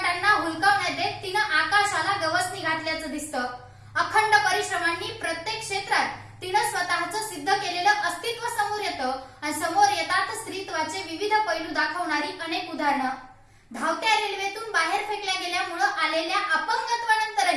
हुलकावण्यात देत तिनं आकाशाला गवसणी घातल्याचं दिसतं. अखंड परिश्रमांनी प्रत्येक क्षेत्रात तिनं स्वतःचं सिद्ध केलेलं अस्तित्व समोर येतं आणि समोर येतात स्त्रीत्वाचे विविध पैलू दाखवणारी अनेक उदाहरणं. धावत्या रेल्वेतून बाहेर फेकल्या गेल्यामुळे आलेल्या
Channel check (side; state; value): both; identical; correlation 1.00